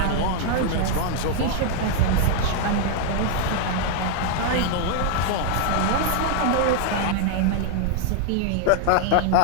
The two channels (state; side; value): different; both; correlation 0.00